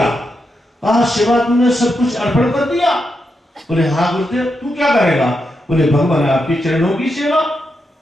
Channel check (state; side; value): normal; both; correlation 0.85